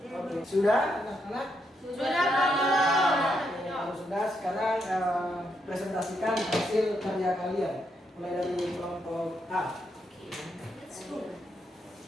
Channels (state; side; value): normal; both; correlation 0.79